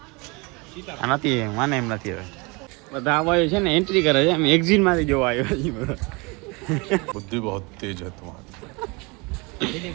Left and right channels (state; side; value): quieter; left; 27.5 dB